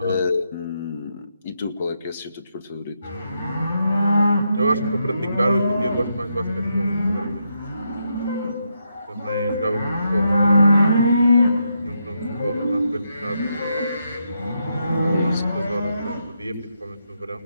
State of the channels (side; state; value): both; inverted; correlation -0.81